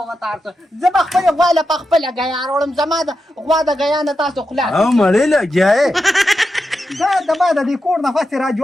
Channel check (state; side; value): normal; both; correlation 0.88